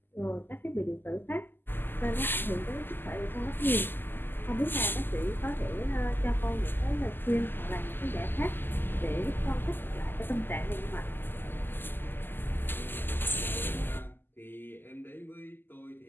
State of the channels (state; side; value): late; right; 0.096 ms